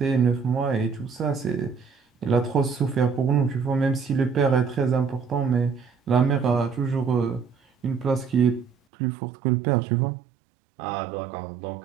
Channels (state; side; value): drops out; left; at 8.8 s